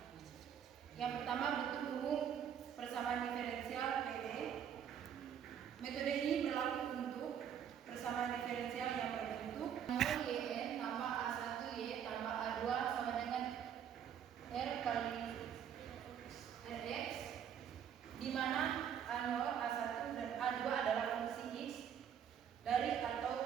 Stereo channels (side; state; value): left; quieter; 8.7 dB